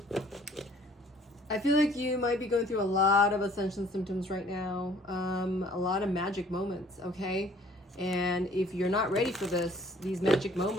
feel like you might be going through a lot of ascension symptoms right now. A lot of magic moments, okay? And if you're not ready for this, these magic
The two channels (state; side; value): normal; both; correlation 0.56